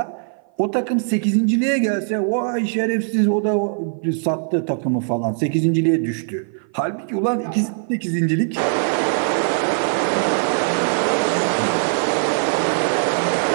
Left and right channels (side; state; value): left; silent; 55 dB below the other